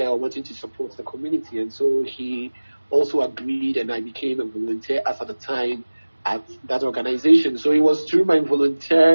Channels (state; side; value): inverted; both; correlation -1.00